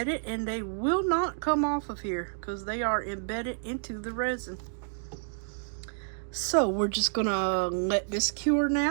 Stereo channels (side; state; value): left; silent; digital silence